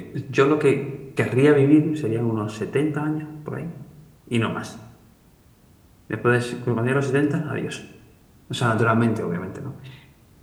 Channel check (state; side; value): identical; both; correlation 1.00